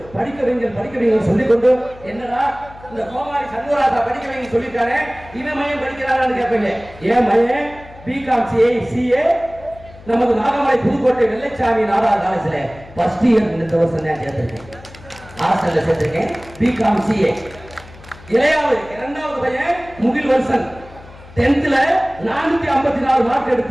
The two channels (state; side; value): noise; left; hum, 20 dB below the sound